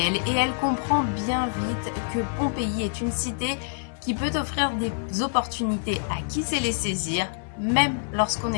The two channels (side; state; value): right; silent; digital silence